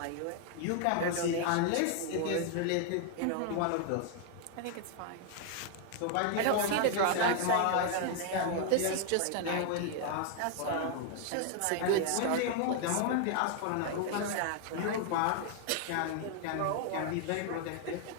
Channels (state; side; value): different; both; correlation 0.00